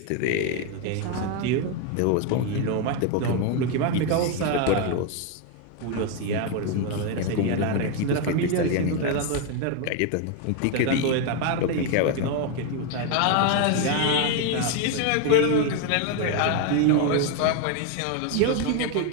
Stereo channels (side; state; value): both; different; correlation 0.01